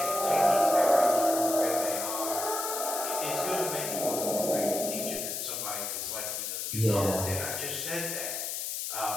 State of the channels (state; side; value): noise; left; hiss, 3 dB below the sound